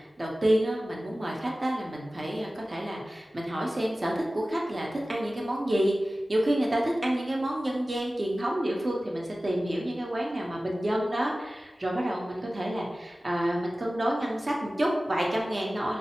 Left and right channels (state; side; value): normal; both; correlation 0.96